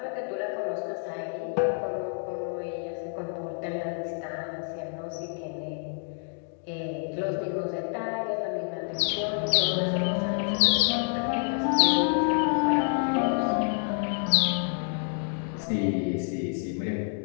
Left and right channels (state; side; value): silent; right; 55 dB below the other